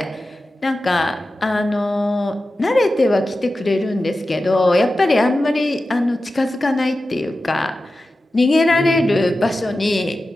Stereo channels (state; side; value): normal; both; correlation 0.93